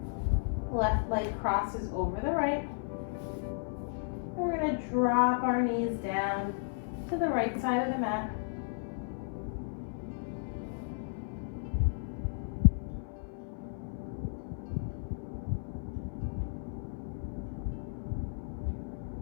Left leg crosses over the right. And we're going to drop our knees down to the right side of the mat.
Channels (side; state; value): right; silent; 55 dB below the other